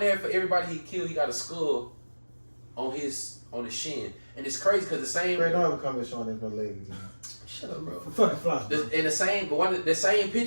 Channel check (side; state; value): both; inverted; correlation -1.00